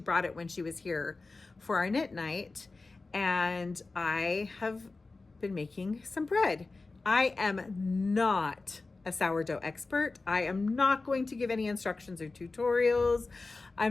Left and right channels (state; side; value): quieter; right; 3.6 dB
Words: it when she was here for our knit night, and I have been making some bread. I am not a sourdough expert. I am not going to give any instructions or tutorials.